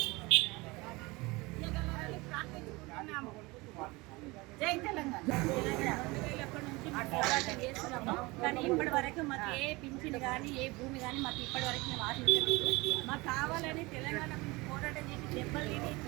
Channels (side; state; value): left; quieter; 23.4 dB